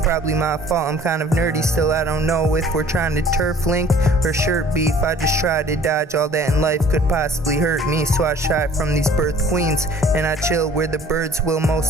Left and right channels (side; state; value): both; normal; correlation 0.52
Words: my fault, I'm kind of nerdy. Still I don't know if we're trying to turf link or shirt beef. I just try to dodge all that in life could possibly hurt me. So I shy from these birth queens and I chill where the birds will